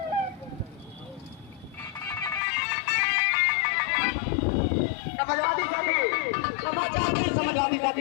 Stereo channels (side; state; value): right; drops out; at 2.4 s